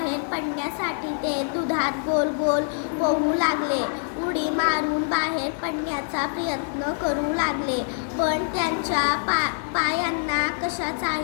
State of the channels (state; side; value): silent; right; 61 dB below the other